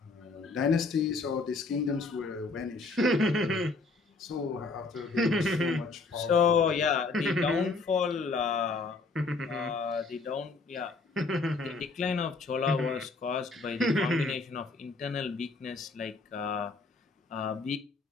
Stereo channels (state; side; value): quieter; right; 3.7 dB